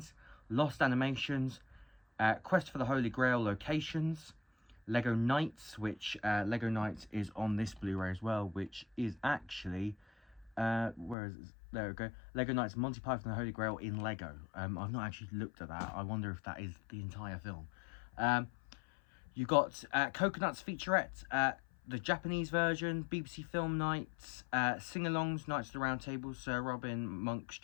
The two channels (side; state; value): right; drops out; at 11.2 s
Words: lost animations, Quest for the Holy Grail locations, Lego Knights, which Lego Knights is on this Blu-ray as well, which is actually where is it? There we go. Lego Knights Monty Python and the Holy Grail in Lego. I've not actually looked at that. I wonder if that is the entire film. You got Coconuts featurette, the Japanese version, BBC Film Nights, sing-alongs, Knights of the Round Table, Sir Robin, Monk's